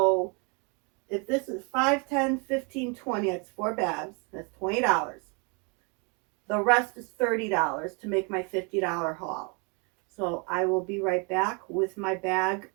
if this is 5, 10, 15, 20, it's 4 bags. That's $20. The rest is $30 to make my $50 haul. So I will be right back with my bag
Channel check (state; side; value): quieter; left; 33.5 dB